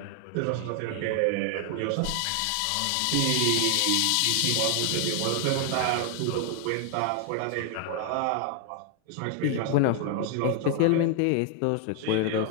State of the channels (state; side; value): different; both; correlation 0.00